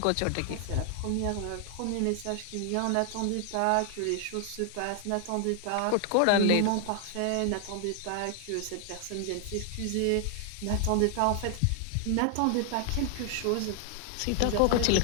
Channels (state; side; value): different; both; correlation 0.00